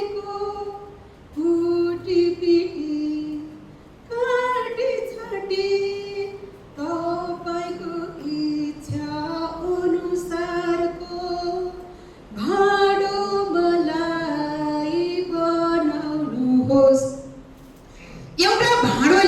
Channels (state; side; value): identical; both; correlation 1.00